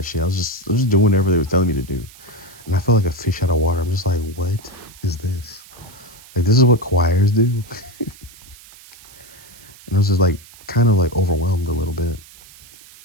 shit. I was just doing whatever they was telling me to do, and I felt like a fish out of water. I'm just like, what is this? Like, this is what choirs do. And I was just like, kind of like overwhelmed a little bit.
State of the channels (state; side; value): noise; right; hiss, 22 dB below the sound